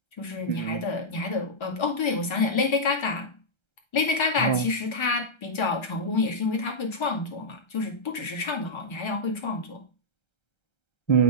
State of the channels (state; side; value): late; right; 1.3 ms